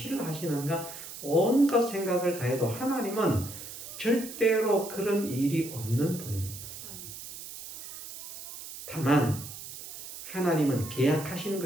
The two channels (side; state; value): right; noise; hiss, 12 dB below the sound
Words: 하시는가, 온갖 생각을 다해도 하나님은 절대로 그런 일이 없는 분입니다. 다만 하나님은 계약하신